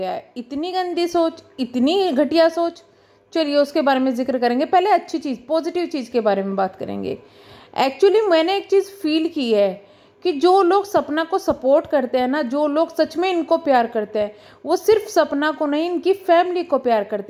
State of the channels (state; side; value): identical; both; correlation 1.00